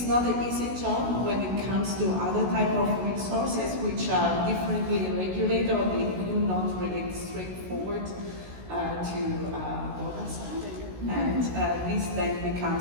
not an easy job when it comes to other type of resources which are differently regulated or they do not relate straightforward to data science. And this then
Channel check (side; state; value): left; late; 16 ms